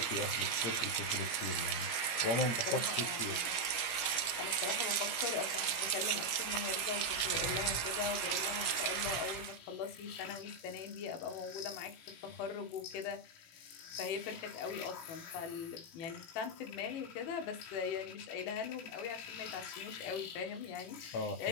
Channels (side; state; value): right; late; 17 ms